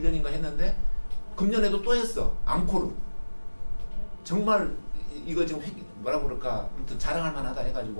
했는데 금년에도 또 했어. 앙코르. 정말 이거 지금 뭐라고 그럴까, 아무튼 자랑할 만하다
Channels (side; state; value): both; inverted; correlation -1.00